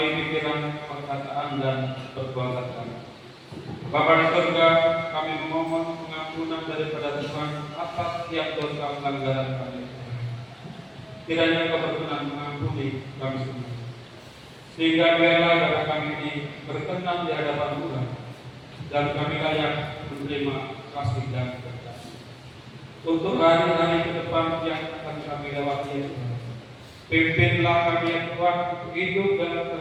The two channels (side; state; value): both; identical; correlation 1.00